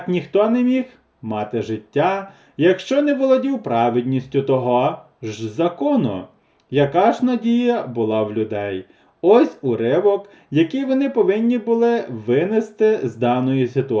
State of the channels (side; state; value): both; identical; correlation 1.00